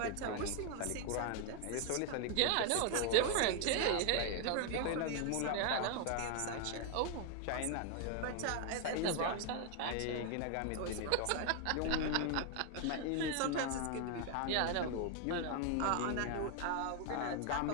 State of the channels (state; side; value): different; both; correlation 0.00